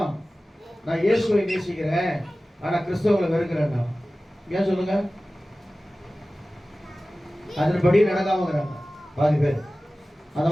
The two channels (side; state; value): both; normal; correlation 0.96